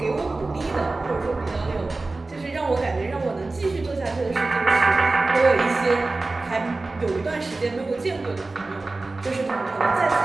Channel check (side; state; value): left; quieter; 3.3 dB